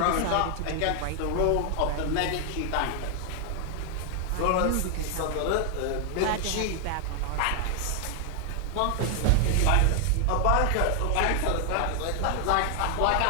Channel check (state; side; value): different; both; correlation 0.00